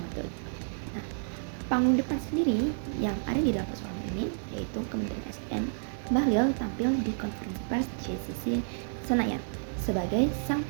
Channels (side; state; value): left; silent; 58 dB below the other